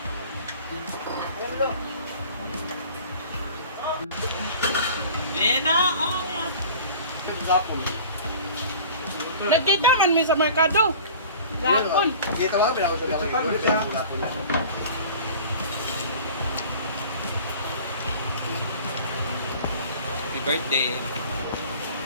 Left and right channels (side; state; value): both; inverted; correlation -0.43